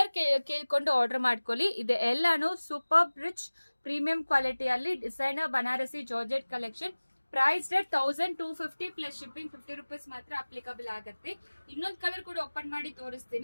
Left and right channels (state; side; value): inverted; both; correlation -1.00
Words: ಕೇಳ್ಕೊಂಡು ಆರ್ಡರ್ ಮಾಡ್ಕೊಳ್ಳಿ. ಇದು ಎಲ್ಲಾನು ಸೂಪರ್ ರಿಚ್ ಪ್ರೀಮಿಯಂ ಕ್ವಾಲಿಟಿಯಲ್ಲಿ designer Banarasi georgette collection. Price rate 1250 plus shipping 50 rupees ಮಾತ್ರ ಅಪ್ಲಿಕಬಲ್ ಆಗುತ್ತೆ. ಇನ್ನೊಂದು ಕಲರ್ ಕೂಡ ಓಪನ್ ಮಾಡಿ